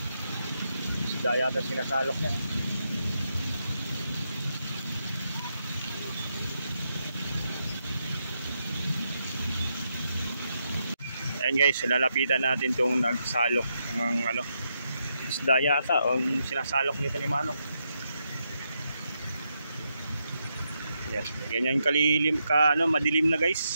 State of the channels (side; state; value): both; inverted; correlation -0.82